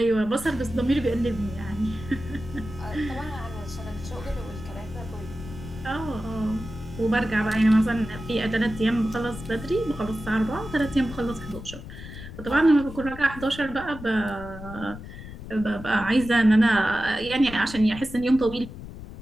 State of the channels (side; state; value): left; noise; rumble, 13 dB below the sound